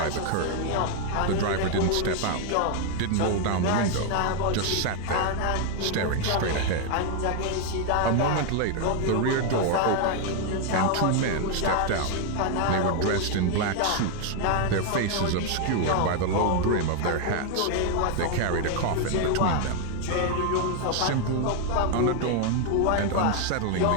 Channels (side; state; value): both; different; correlation 0.00